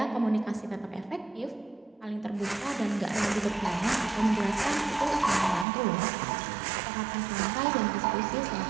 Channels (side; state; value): left; drops out; at 5.7 s